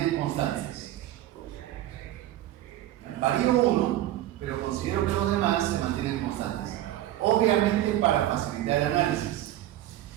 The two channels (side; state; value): left; quieter; 13.8 dB